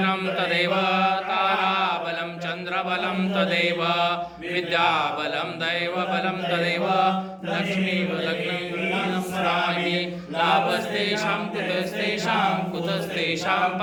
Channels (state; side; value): identical; both; correlation 1.00